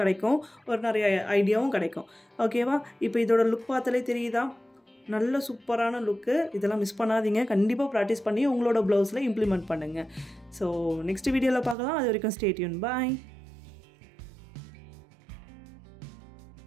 கிடைக்கும், ஒரு நிறைய ஐடியாவும் கிடைக்கும். ஓகேவா, இப்போ இதோட லுக் பார்த்தாலே தெரியுதா, நல்ல சூப்பரான லுக்கு. இதெல்லாம் மிஸ் பண்ணாதீங்க, கண்டிப்பாக ப்ராக்டிஸ் பண்ணி உங்களோட ப்ளவுஸில் இம்ப்ளிமெண்ட் பண்ணுங்கள். ஸோ நெக்ஸ்ட் வீடியோவில் பார்க்கலாம். அது வரைக்கும் ஸ்டே டியூன். பாய்.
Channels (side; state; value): left; drops out; at 11.8 s